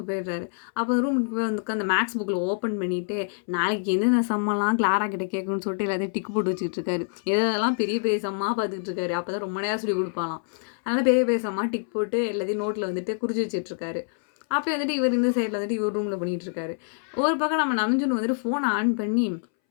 போயிடுறாரு. அப்போ ரூமுக்கு போய் வந்து உட்காந்து மேக்ஸ் புக்ல ஓப்பன் பண்ணிட்டு, நாளைக்கு எந்தெந்த சம்மெல்லாம் கிளாரா கிட்ட கேட்கணும்னு சொல்லிட்டு எல்லாத்தையும் டிக் போட்டு வச்சுக்கிட்டு இருக்காரு. எதெல்லாம் பெரிய பெரிய சம்மா பார்த்துக்கிட்டு இருக்காரு. அப்பதான் ரொம்ப நேரம் சொல்லிக் குடுப்பாளாம். அதனால பெரிய பெரிய சம்மா டிக் போட்டு எல்லாத்தையும் நோட்ல வந்துட்டு குறிச்சு வச்சுட்டு இருக்காரு. அப்பயும் வந்துட்டு இவர் இந்த சைடுல வந்துட்டு இவர் ரூம்ல பண்ணிட்டு இருக்காரு. ஒரு பக்கம் நம்ம நம்ஜுன் வந்துட்டு ஃபோன ஆன் பண்ணி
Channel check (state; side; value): silent; right; 61 dB below the other